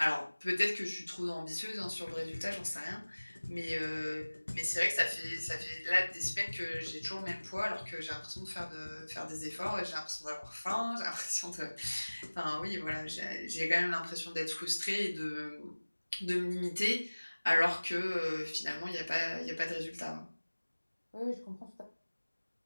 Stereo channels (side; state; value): both; inverted; correlation -1.00